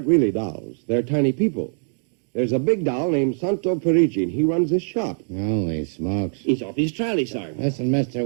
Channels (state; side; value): silent; left; digital silence